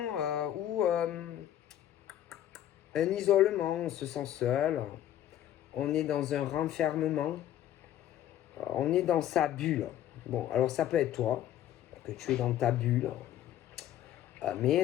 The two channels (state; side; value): quieter; right; 11.8 dB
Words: où un isolement, on se sent seul, on est dans un renfermement, on est dans sa bulle. Bon, alors ça peut être toi, que tu es dans ta bulle,